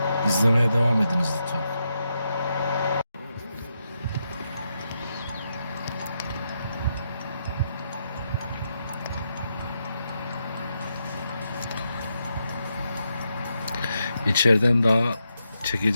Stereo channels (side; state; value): both; inverted; correlation -0.83